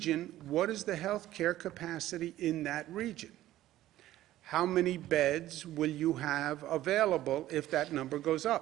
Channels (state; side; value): quieter; left; 14.4 dB